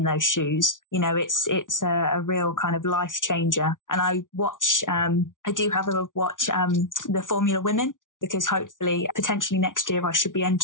those shoes, you know, it's a real kind of life changer. And I do have a watch the Formula Women. because hopefully, potentially next year, I should be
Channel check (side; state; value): right; late; 0.88 ms